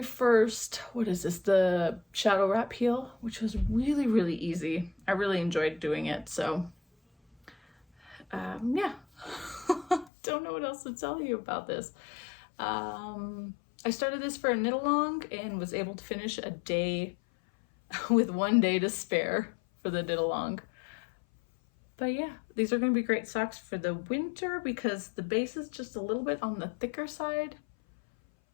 first, what is this, the shadow wrap heel, which was really, really easy. I really enjoyed doing it, so yeah. Don't know what else to tell you about this. I started this for a knit along and was able to finish a day with 1 day to spare for the knit along. But yeah, these are going to be great socks for the winter because the base is just a little bit on the thicker side.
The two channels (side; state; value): right; drops out; at 10.1 s